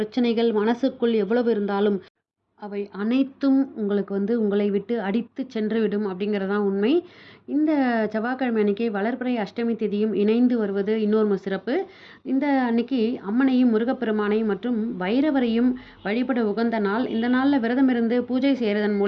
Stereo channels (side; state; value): both; identical; correlation 1.00